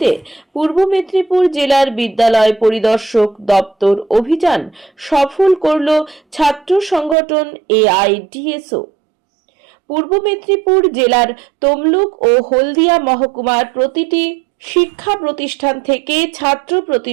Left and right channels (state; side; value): drops out; left; at 7.2 s